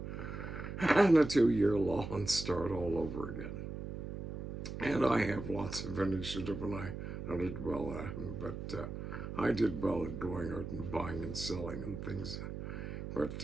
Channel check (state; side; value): noise; right; hum, 7 dB below the sound